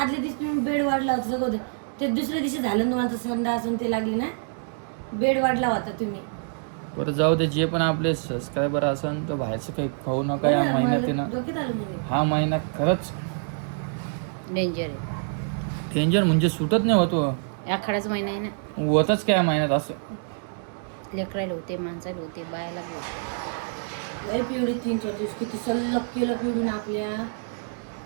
दिवशी तुम्ही बेड वाढला होता सगळं होतं. ते दुसऱ्या दिवशी झालं ना तुम्हाला संडास असून ते लागली ना, बेड वाढला होता तुम्ही. बरं जाऊ दे. जे पण आपले सबस्क्रायबर असन तर बाहेरचं काही खाऊ नका या महिन्यात आहे ना. डोक्यात आलं म्हणजे. हा महिना खरंच डेंजर आहे. डेंजर म्हणजे सुटत नाही होतो. आखाडाच महिना आहे ना. होतच काय महिन्यात असं. लेकरायला होते, माणसाला होते, बायाला बी होते. लय पिवडी 3-4 दिवस किती सल्लग केलं पिवडीनं आपल्या.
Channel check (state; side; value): silent; left; digital silence